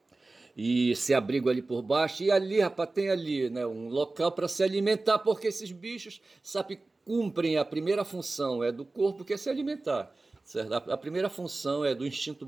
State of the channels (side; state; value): left; quieter; 3.3 dB